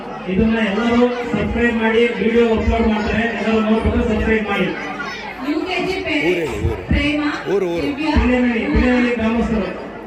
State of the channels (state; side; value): identical; both; correlation 1.00